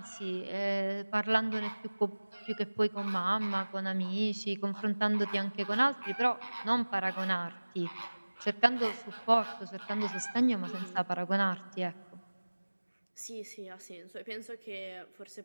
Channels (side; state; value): both; inverted; correlation -1.00